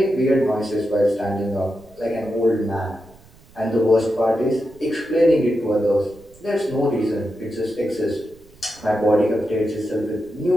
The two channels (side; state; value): right; noise; rumble, 26 dB below the sound